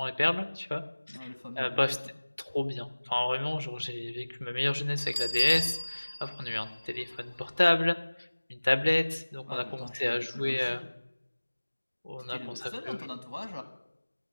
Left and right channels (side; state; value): both; inverted; correlation -1.00